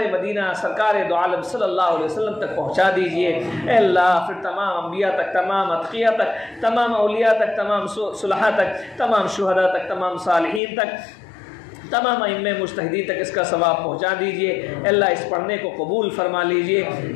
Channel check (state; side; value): drops out; right; at 10.6 s